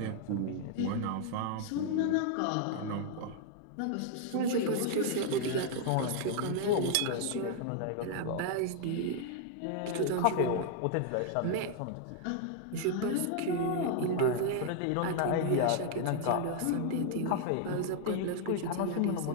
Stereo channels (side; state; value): both; different; correlation 0.00